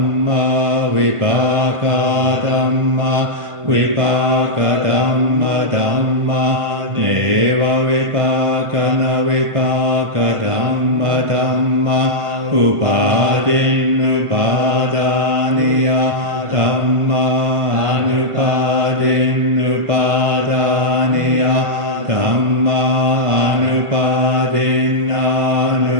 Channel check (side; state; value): left; late; 1.5 ms